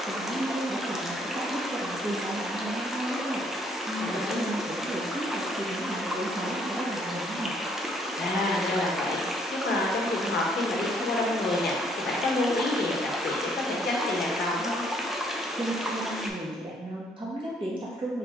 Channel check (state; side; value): normal; both; correlation 0.66